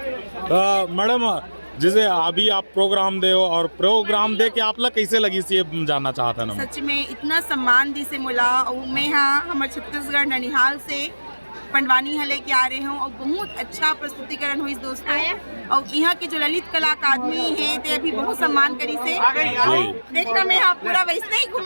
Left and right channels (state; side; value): inverted; both; correlation -1.00